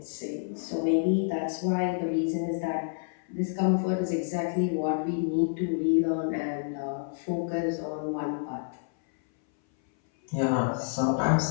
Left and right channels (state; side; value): silent; right; 59 dB below the other